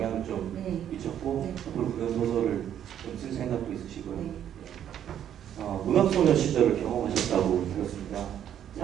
좀 네. 미쳤고 네. 앞으로 그런 소설을 좀 쓸 생각도 있으시고요. 네. 문학소녀 시절을 경험하셨다고 들었습니다.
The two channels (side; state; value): left; quieter; 10.0 dB